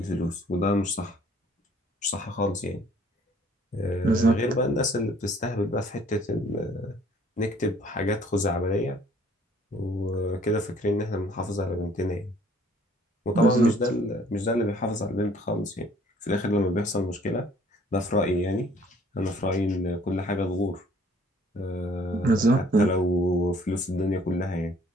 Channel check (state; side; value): normal; both; correlation 0.58